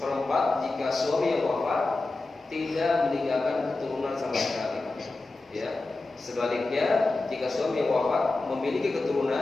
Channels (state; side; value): quieter; right; 3.3 dB